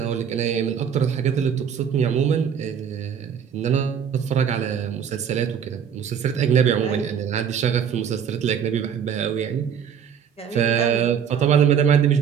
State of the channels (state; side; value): quieter; left; 7.8 dB